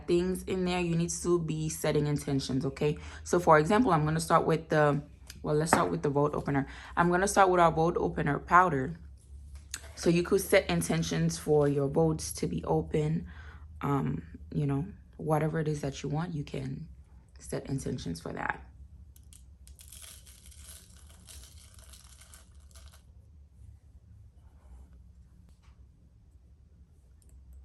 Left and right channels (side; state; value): both; identical; correlation 1.00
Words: things in there, you need to be setting intentions, okay? So for example, I'm going to start with the, well, let's start with the vote opener. I'm going to start with our vote opener powder. So you could set intentions for your votes to be open. You know, whatever it is that you want, you can set intentions for that.